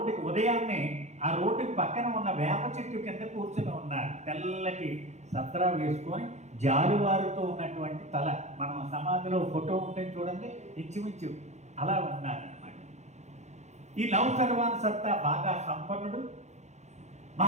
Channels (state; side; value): late; left; 0.33 ms